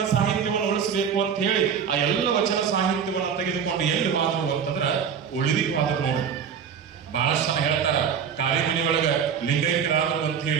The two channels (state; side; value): quieter; left; 7.4 dB